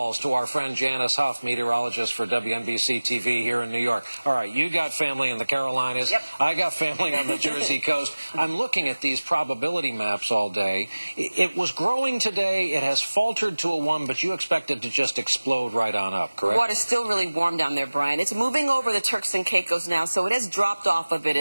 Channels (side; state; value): both; inverted; correlation -1.00